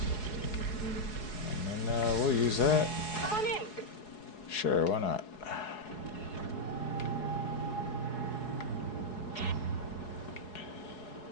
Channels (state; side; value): late; right; 4.7 ms